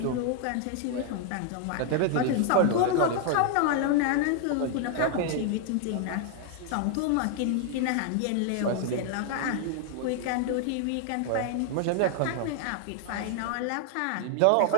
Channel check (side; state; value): both; different; correlation 0.00